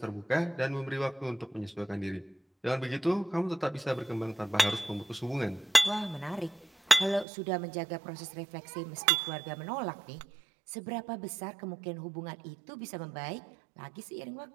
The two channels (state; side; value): drops out; left; at 7.2 s